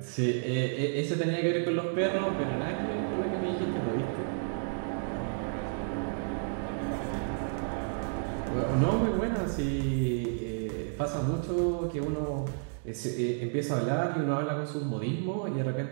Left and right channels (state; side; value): silent; left; digital silence